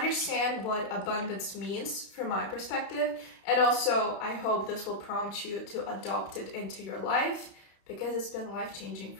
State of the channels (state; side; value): late; right; 32 ms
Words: what abundance means from my perspective. And also I hope this will prompt you to adopt it into your life, because it's been life-changing